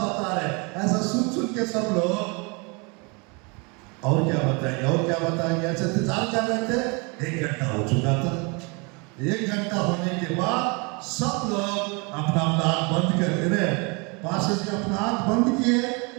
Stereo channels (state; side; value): quieter; left; 30.8 dB